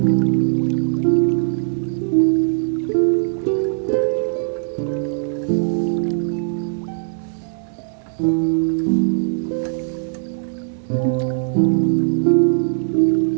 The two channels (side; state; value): left; silent; digital silence